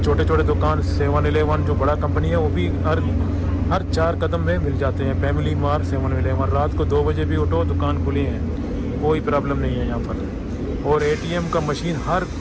छोटे छोटे दुकान 7-Eleven जो बड़ा कंपनी है वो भी हर 4 कदम में मिल जाते हैं। फैमिली मार्ट, 7-Eleven, रात को 2 बजे भी उठो दुकान खुली है, कोई प्रॉब्लम नहीं है यहाँ पर। और ATM का मशीन हर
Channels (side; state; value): both; identical; correlation 1.00